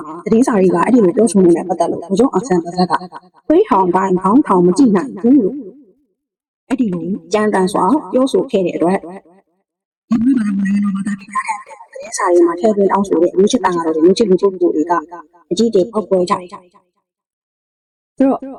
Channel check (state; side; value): identical; both; correlation 1.00